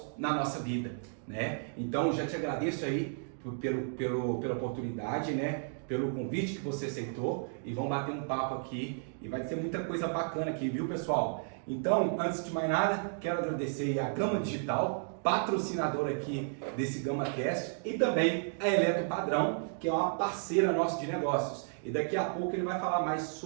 na nossa vida, né? Então já te agradeço aí pela oportunidade, né? Pelo convite que você aceitou e vamos bater um papo aqui e vai ser muita coisa bacana aqui, viu, pessoal? Então, antes de mais nada, quero agradecer a Gama Digital, patrocinadora aqui desse GamaCast, e também a Eletro Padrão, que é uma parceira nossa de negócios. E daqui a pouco ele vai falar mais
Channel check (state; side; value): silent; left; digital silence